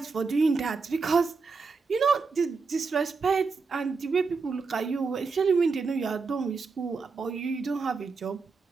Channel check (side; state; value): left; quieter; 4.6 dB